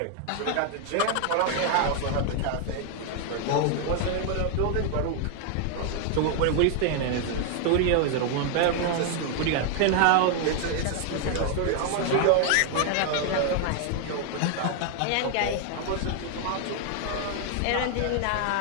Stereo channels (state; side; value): different; both; correlation 0.00